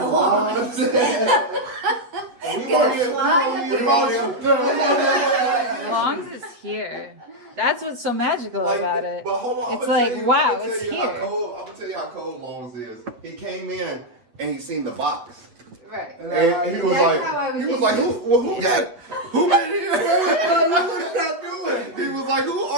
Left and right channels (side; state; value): left; late; 8.0 ms